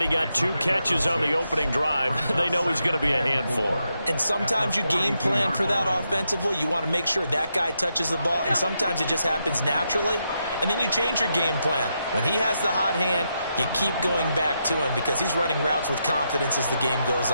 got 2 catches on the opening drive. They know he's going to be a handful. And sometimes you game plan for that offensively. You want to make sure that guy touches the ball, and sometimes it just happens naturally. And then you change your game plan. When he has the hot hand, you keep going back to him because he's running routes with confidence as the game goes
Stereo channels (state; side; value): inverted; both; correlation -0.83